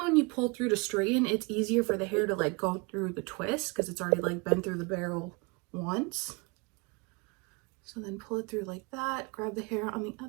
when you pull through to straighten, it's easier for the hair to like go through the twist because it's already like been through the barrel once. So then pull it through like that, grab the hair on the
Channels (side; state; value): left; quieter; 29.0 dB